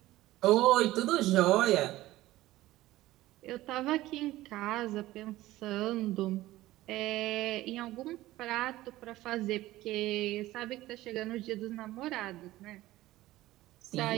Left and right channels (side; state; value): left; quieter; 16.5 dB